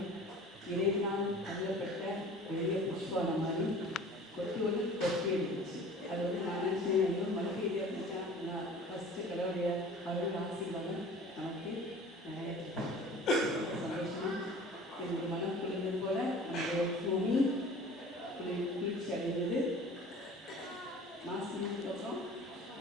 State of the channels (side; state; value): both; normal; correlation 0.44